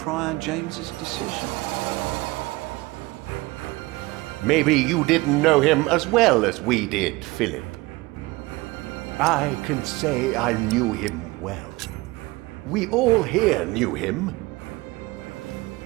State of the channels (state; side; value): quieter; left; 21.6 dB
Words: James's decision. Maybe you didn't know him as well as we did, Philip. I can say I knew him well. We all here knew him.